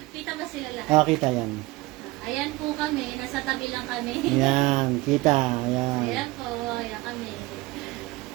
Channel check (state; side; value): quieter; left; 20.4 dB